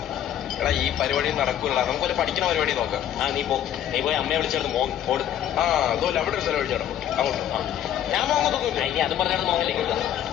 എടാ ഈ പരിപാടി നടക്കൂല. നമുക്ക് ഒരു പഠിക്കുന്ന പരിപാടി നോക്കാം. നീ പോയി അമ്മയെ വിളിച്ചെടുത്ത് ഓട്. അതുപോലെ അവിടെ ഒരു സ്ഥലം ഒഴിച്ചാടോ അങ്ങോട്ട്. ഞാൻ മോങ്ങത്തൊന്നുമില്ല. ഇനി അതും പറഞ്ഞാൽ മോങ്ങല്ലേ.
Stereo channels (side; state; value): right; quieter; 10.6 dB